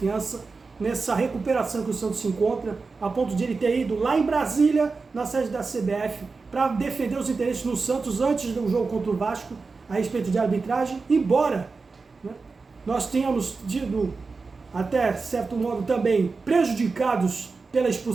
nessa recuperação que o Santos se encontra, a ponto de ele ter ido lá em Brasília, na sede da CBF, para defender os interesses no Santos antes do jogo contra o Vasco, a respeito de arbitragem, embora, né, nós tenhamos tido, até certo modo também, prejudicados pela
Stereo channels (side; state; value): left; quieter; 4.3 dB